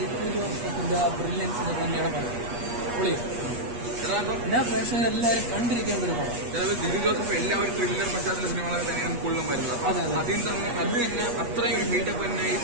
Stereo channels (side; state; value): left; late; 8.4 ms